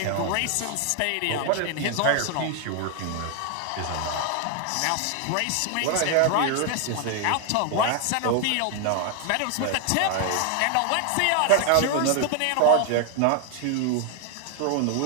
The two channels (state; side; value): different; both; correlation 0.00